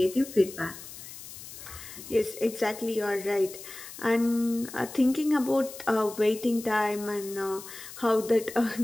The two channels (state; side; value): noise; left; hiss, 14 dB below the sound